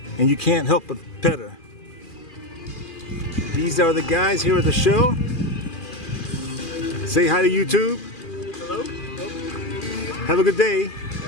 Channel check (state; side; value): late; right; 2.4 ms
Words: and you can't help but pet her. These are the guys here at the show. Say hi to YouTube. Hello? Have a good day.